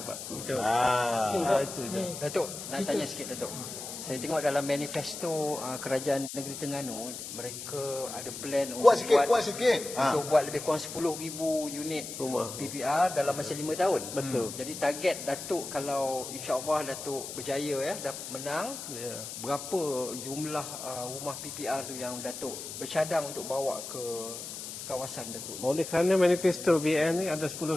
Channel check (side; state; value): left; noise; hiss, 9 dB below the sound